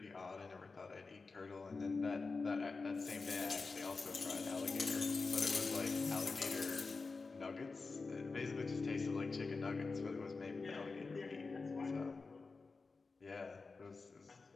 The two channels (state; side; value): quieter; right; 4.1 dB